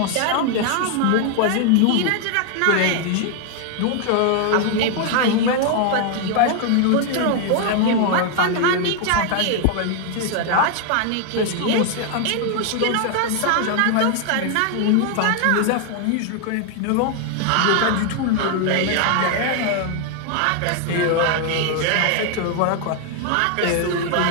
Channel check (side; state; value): both; different; correlation 0.00